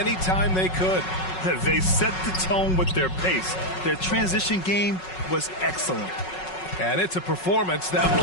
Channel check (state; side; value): late; right; 5.4 ms